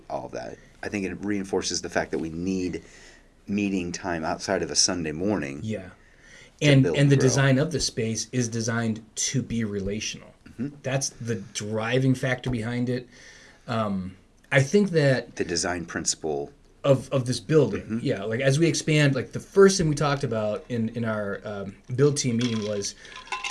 all of that. I think it reinforces the fact that we need meeting time outside of a Sunday morning. Yeah. build And and the grow. design of the space is designed to be relational. That's the driving factor behind it. I think that The design principle. of this building, yeah, like as we expand, like the first thing we talked about in our build team meeting was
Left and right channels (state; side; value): identical; both; correlation 1.00